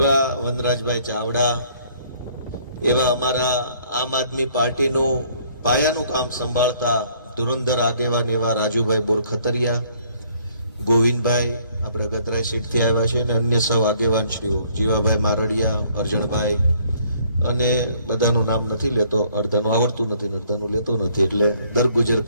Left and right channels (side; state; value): both; inverted; correlation -0.62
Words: વનરાજભાઈ ચાવડા, એવા અમારા આમ આદમી પાર્ટીનું પાયાનું કામ સંભાળતા ધુરંધર આગેવાન એવા રાજુભાઈ બોરખતરિયા, ગોવિંદભાઈ આપણે ગતરાઈ સીટથી આવ્યા છે, અને અન્ય સૌ આગેવાનશ્રીઓ જીવાભાઈ મારડિયા, અરજણભાઈ, અને બધાનું નામ નથી લેતો, અડધાનું આવડતું નથી, અડધાનું લેતો નથી, એટલે દરગુજર